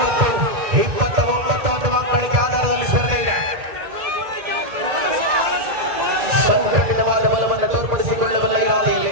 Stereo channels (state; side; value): late; left; 2.4 ms